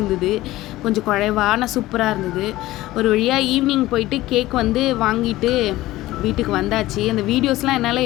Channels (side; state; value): right; quieter; 16.9 dB